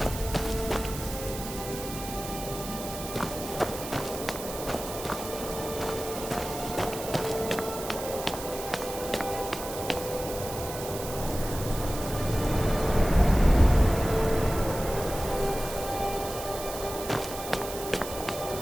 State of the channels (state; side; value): noise; right; hiss, 10 dB below the sound